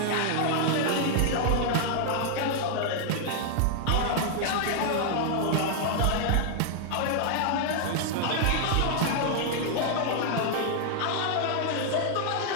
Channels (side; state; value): both; different; correlation 0.00